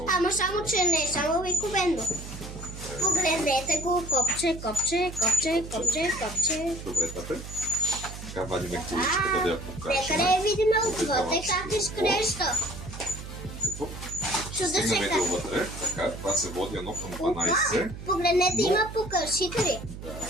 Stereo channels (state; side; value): noise; right; hum, 11 dB below the sound